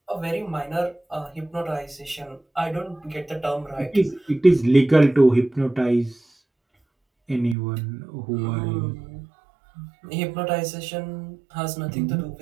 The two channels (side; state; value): left; drops out; at 7.6 s